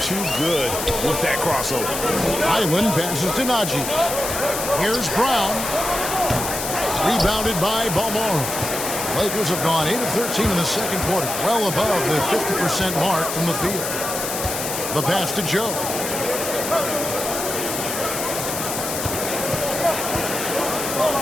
too good with that crossover. Island passes to Najee. Here's Brown. Rebounded by Balmaro. Lakers have gone 8 of 13 in the second quarter, well above the 50% mark from the field. The pass to Joe.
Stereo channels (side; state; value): left; noise; hiss, 4 dB below the sound